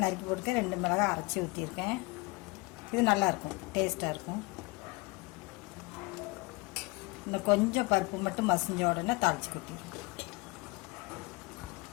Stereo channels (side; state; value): right; quieter; 24.4 dB